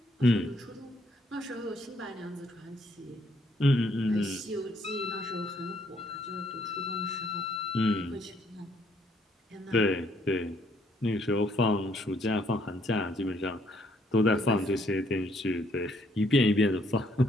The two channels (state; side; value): normal; both; correlation 0.68